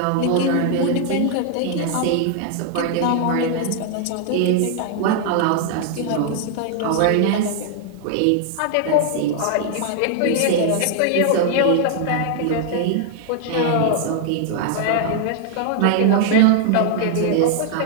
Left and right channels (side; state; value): both; different; correlation 0.00